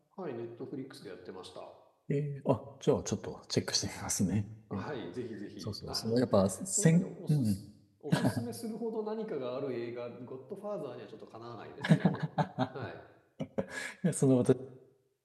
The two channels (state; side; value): identical; both; correlation 1.00